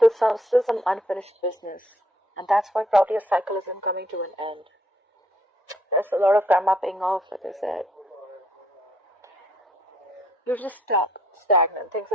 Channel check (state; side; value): normal; both; correlation 0.67